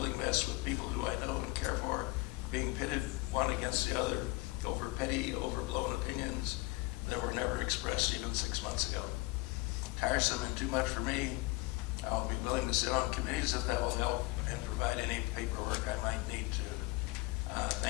mess with people who I know and care for, being pitted one against the other over petty, overblown opinions that were never expressed even 6 months ago. Tiresome and too much for me. I'll be willing to sit on committees if that will help and provide any paperwork I might need to.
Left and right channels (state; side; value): quieter; right; 22.5 dB